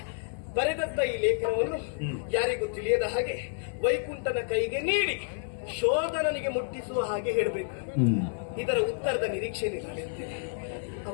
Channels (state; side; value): silent; right; digital silence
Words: ಬರೆದಂತ ಈ ಲೇಖನವನ್ನು ಯಾರಿಗೂ ತಿಳಿಯದ ಹಾಗೆ ವೈಕುಂಠನ ಕೈಗೆ ನೀಡಿ ಶೋಧನನಿಗೆ ಮುಟ್ಟಿಸುವ ಹಾಗೆ ಹೇಳಬೇಕು. ಇದರ ಉತ್ತರದ ನಿರೀಕ್ಷೆ